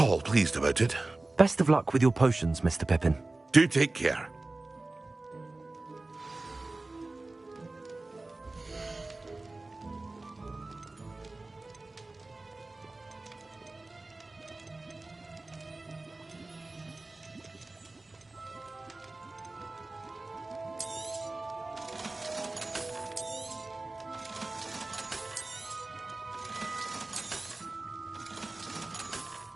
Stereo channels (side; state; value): left; quieter; 3.1 dB